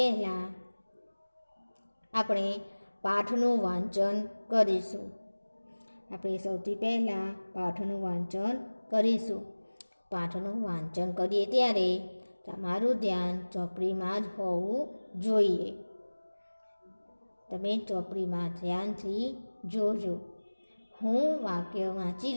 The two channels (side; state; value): both; inverted; correlation -1.00